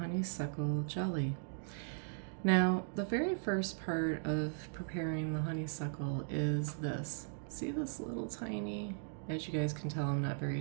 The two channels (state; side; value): silent; left; digital silence